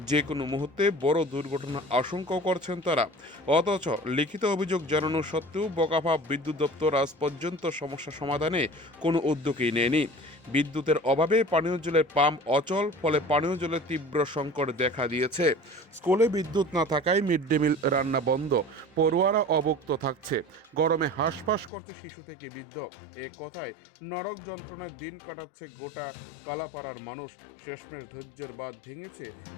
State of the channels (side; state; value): right; drops out; at 21.7 s